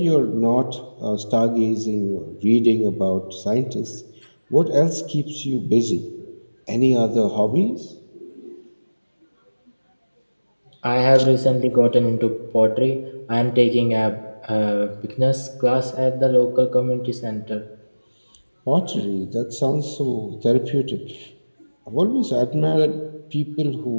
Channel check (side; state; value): both; inverted; correlation -1.00